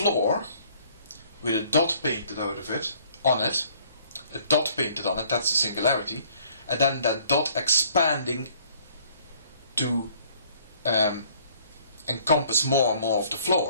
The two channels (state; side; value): inverted; both; correlation -0.59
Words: with a dot painted out of it, on it, a dot painted on it, that's the singularity, and then that dot expanding to encompass more and more of the